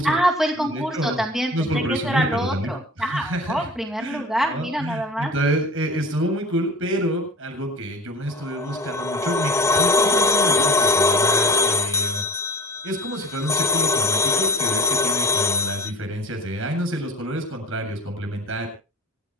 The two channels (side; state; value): both; normal; correlation 0.33